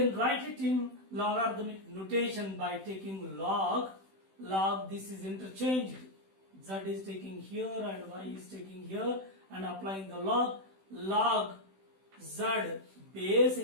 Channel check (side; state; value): left; late; 16 ms